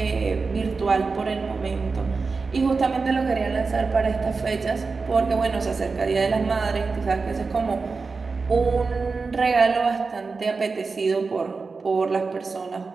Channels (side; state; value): left; quieter; 4.4 dB